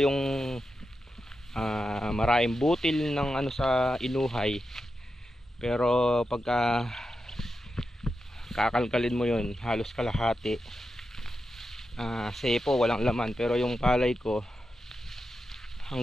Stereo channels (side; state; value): both; normal; correlation 0.89